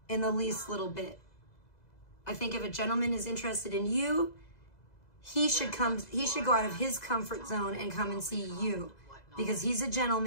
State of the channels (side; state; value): right; late; 2.0 ms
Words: in the least little bit. I think if a gentleman is interested in you, he should go out of his comfort zone and come and see you. Because he's a